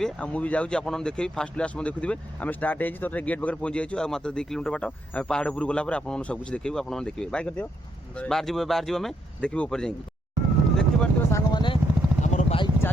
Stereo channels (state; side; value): normal; both; correlation 0.77